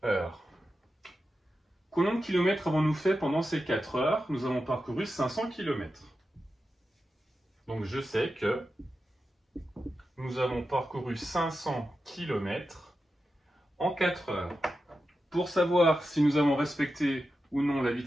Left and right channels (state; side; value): normal; both; correlation 0.90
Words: heures. Combien de kilomètres avons-nous fait pendant ces 4 heures? Nous avons parcouru 500 km. Donc, je sais que nous avons parcouru 500 km en 4 heures. Pour savoir si nous avons respecté ou non la